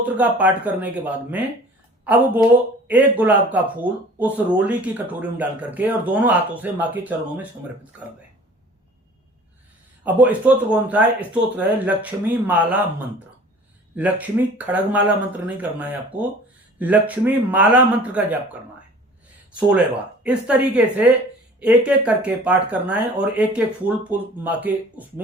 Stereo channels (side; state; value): both; normal; correlation 0.47